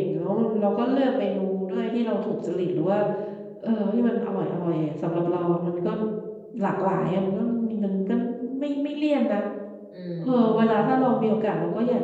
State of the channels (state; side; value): identical; both; correlation 1.00